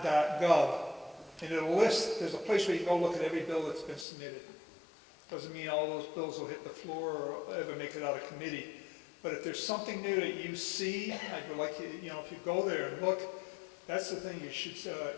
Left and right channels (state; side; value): drops out; right; at 4.0 s